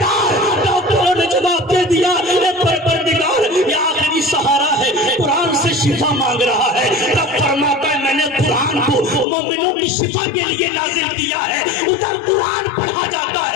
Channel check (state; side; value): drops out; right; at 9.2 s